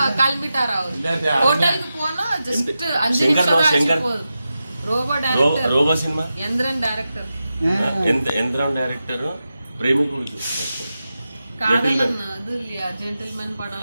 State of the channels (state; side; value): inverted; both; correlation -0.91